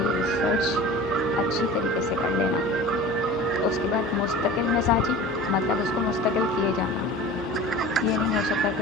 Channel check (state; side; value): normal; both; correlation 0.37